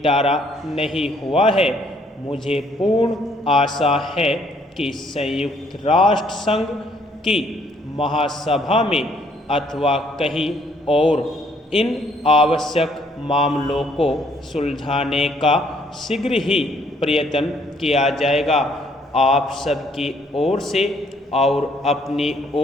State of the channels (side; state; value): both; normal; correlation 0.65